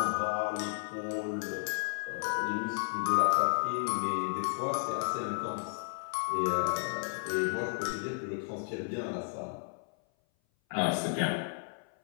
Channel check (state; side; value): silent; right; 56 dB below the other